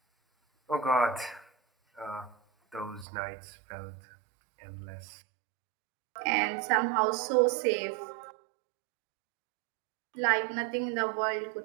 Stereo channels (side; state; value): left; drops out; at 3.1 s